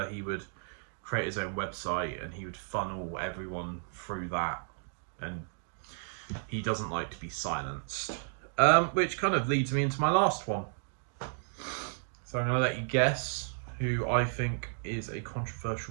he would create his own website and he would funnel everyone through that. And he doesn't like to be silenced. Which kind of leads me into my last one. So I'm going to let you guess who I think is a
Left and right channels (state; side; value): silent; left; digital silence